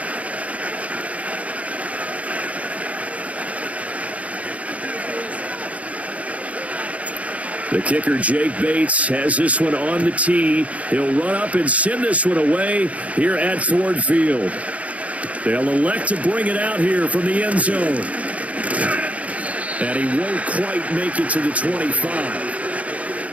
The kicker, Jake Bates, has this one on the tee. He'll run up and send this one away here at Ford Field. They'll elect to bring it out here from the end zone. And he won't quite make it to the 25.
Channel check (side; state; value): left; late; 0.067 ms